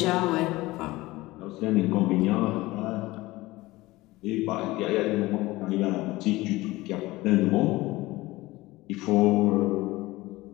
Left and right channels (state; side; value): quieter; right; 19.5 dB